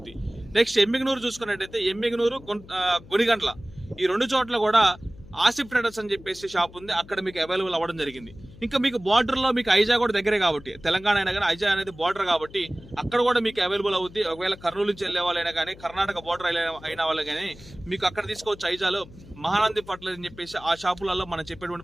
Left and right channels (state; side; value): noise; left; hum, 20 dB below the sound